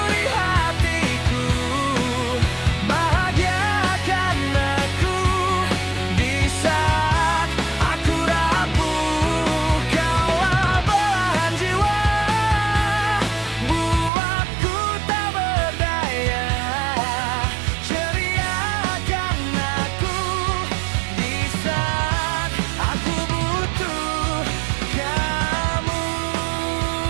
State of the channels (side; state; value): left; drops out; at 14.1 s